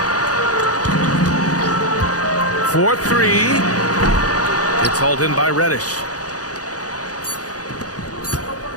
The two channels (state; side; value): late; right; 0.67 ms